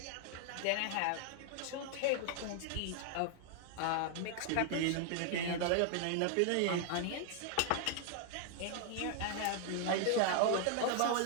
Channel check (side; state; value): both; different; correlation 0.00